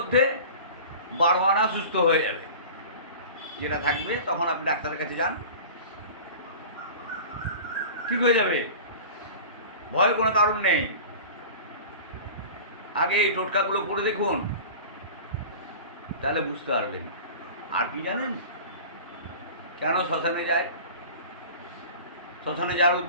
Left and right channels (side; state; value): both; inverted; correlation -0.37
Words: 12 আনা সুস্থ হয়ে যাবে। যেটা থাকবে তখন আপনি ডাক্তারের কাছে যান, ঠিক হয়ে যাবে, ভয়ের কোনো কারণ নেই। আগে এই টোটকাগুলো করে দেখুন, তাহলে বুঝতে পারবেন। আর কি জানেন কেন শ্মশানে যায়? শ্মশানে যাওয়ার